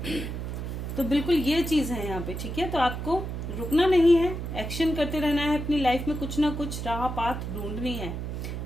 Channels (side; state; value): right; noise; hum, 5 dB below the sound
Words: तो बिल्कुल ये चीज है यहाँ पे, ठीक है। तो आपको रुकना नहीं है, एक्शन करते रहना है, अपनी लाइफ में कुछ ना कुछ राह पाथ ढूंढनी है,